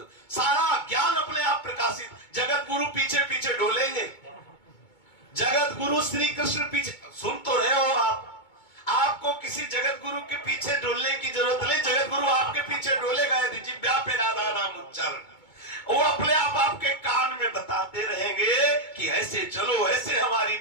सारा ज्ञान अपने आप प्रकाशित। जगत गुरु पीछे पीछे डोलेंगे, जगत गुरु श्री कृष्ण पीछे, सुन तो रहे हो आप, आपको किसी जगत गुरु के पीछे डोलने की जरूरत नहीं। जगत गुरु आपके पीछे डोलेगा यदि जिह्वा पे राधा नाम उच्चारण, वो अपने आप आपके कान में बताते रहेंगे कि ऐसे चलो, ऐसे हमारी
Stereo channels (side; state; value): right; late; 2.2 ms